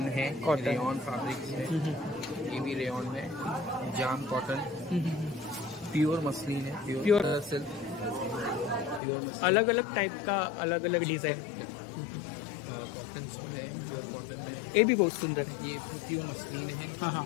है, रेयॉन फैब्रिक्स है। ये भी रेयॉन में, जाम कॉटन, प्योर मसलिन है, प्योर सिल्क, प्योर मसलिन। अलग अलग टाइप का अलग अलग डिजाइन कॉटन में है, प्योर कॉटन में। ये भी बहुत सुंदर है। ये प्योर मसलिन है। हाँ।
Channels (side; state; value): right; drops out; at 9.0 s